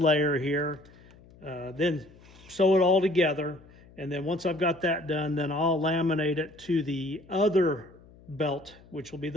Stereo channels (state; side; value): noise; left; hum, 24 dB below the sound